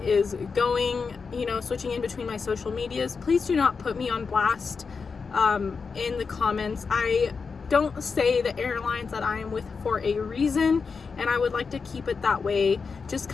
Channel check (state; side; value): quieter; right; 5.1 dB